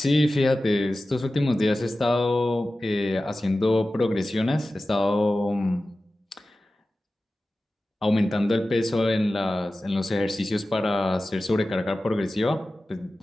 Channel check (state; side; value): normal; both; correlation 0.95